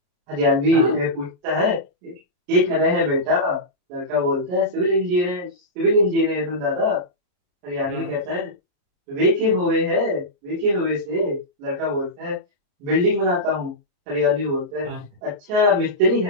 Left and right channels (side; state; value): left; late; 33 ms